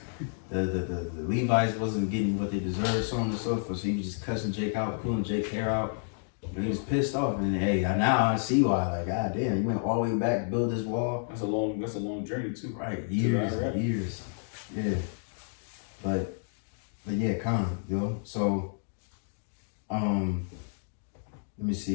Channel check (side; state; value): right; silent; digital silence